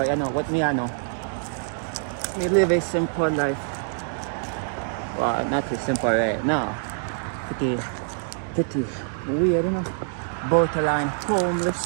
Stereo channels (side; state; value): left; silent; 62 dB below the other